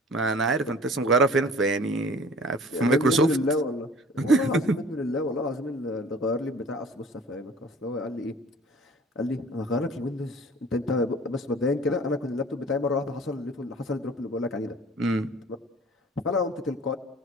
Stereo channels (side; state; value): both; normal; correlation 0.47